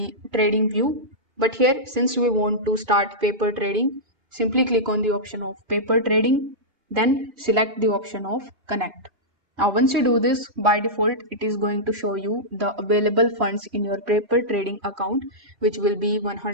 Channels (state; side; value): late; left; 2.8 ms